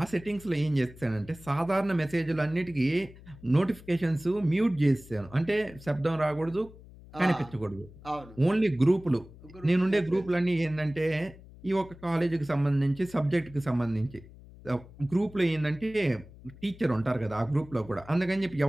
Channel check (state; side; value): noise; left; hum, 20 dB below the sound